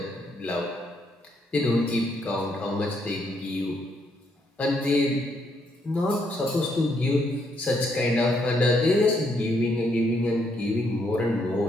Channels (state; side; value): normal; both; correlation 0.74